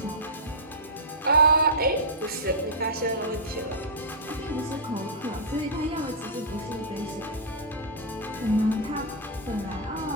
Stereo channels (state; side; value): normal; both; correlation -0.13